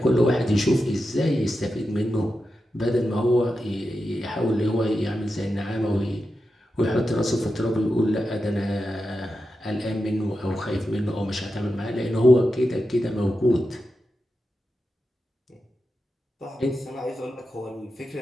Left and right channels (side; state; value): both; normal; correlation 0.90